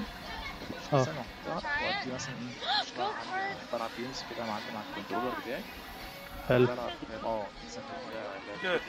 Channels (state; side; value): identical; both; correlation 1.00